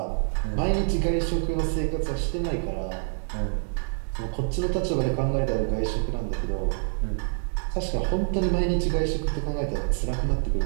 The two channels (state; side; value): silent; left; digital silence